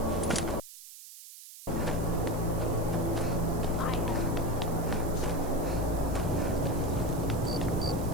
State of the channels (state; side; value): noise; right; hiss, 16 dB below the sound